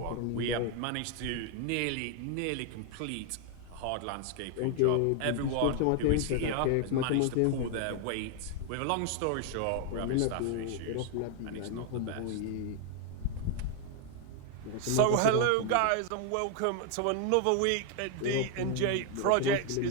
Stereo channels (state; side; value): different; both; correlation 0.00